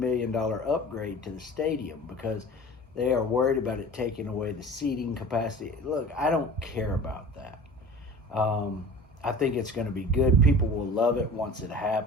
upgrade to the stadium because they are worried about it taking away the seating capacity. Look, I don't care about that. Um, I think it's going to be good. People will love it once it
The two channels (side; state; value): both; normal; correlation 0.39